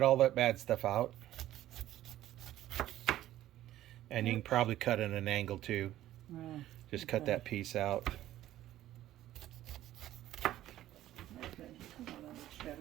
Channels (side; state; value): left; quieter; 13.7 dB